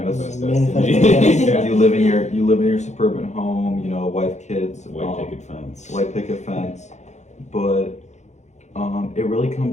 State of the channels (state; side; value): late; right; 0.34 ms